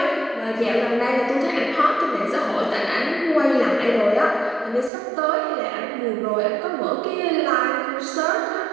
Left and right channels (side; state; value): left; drops out; at 4.9 s